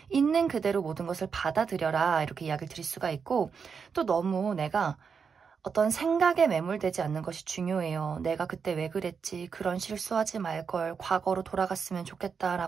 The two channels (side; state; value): left; quieter; 6.0 dB